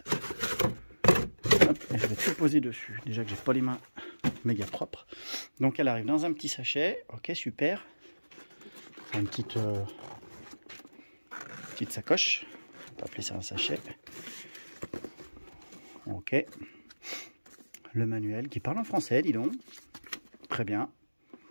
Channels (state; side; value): inverted; both; correlation -1.00